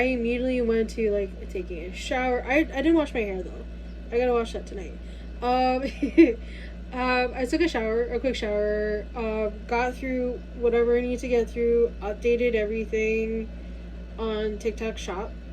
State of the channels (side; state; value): both; identical; correlation 1.00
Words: immediately went to like taking a shower. I didn't wash my hair though. I gotta wash that tonight. I took a quick shower, got through whatever I need to get through, updated everything on TikTok Shop.